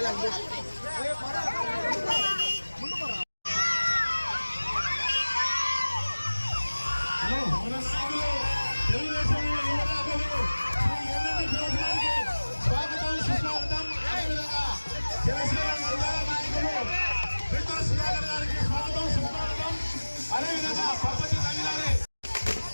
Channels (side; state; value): both; inverted; correlation -1.00